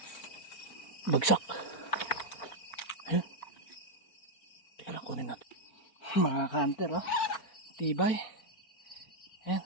Bagsak. Ayun. Teka lang, kunin natin. Mga ka-hunter, tibay. Ayan,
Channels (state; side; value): late; right; 4.5 ms